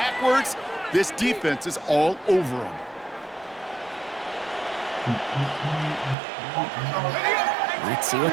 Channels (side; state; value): left; drops out; at 6.2 s